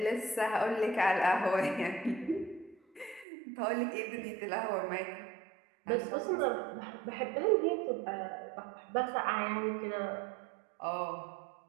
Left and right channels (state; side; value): drops out; left; at 3.2 s